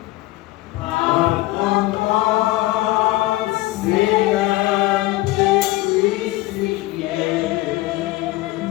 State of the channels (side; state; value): right; quieter; 18.5 dB